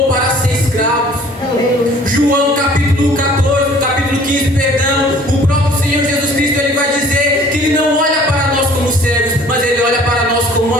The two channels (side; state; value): both; normal; correlation 0.52